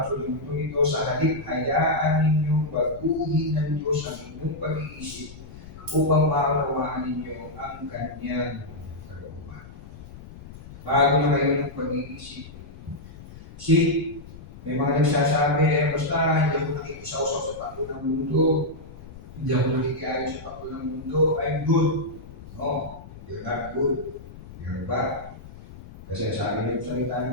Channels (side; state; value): left; noise; rumble, 16 dB below the sound